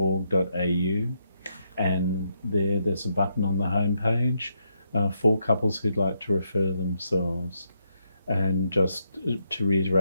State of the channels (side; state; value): both; inverted; correlation -0.79